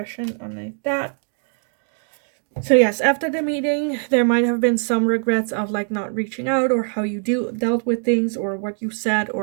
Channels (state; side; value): silent; left; 55 dB below the other